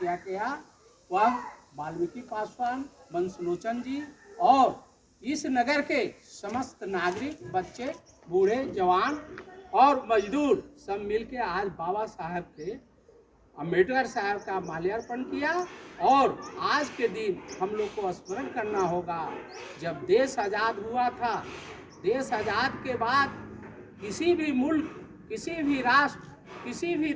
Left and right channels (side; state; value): both; identical; correlation 1.00